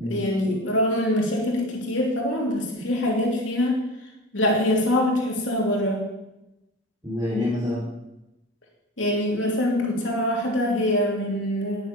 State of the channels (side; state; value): both; normal; correlation 0.31